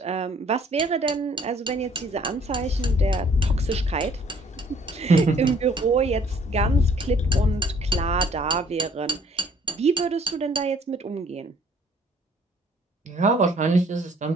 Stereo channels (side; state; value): both; normal; correlation 0.59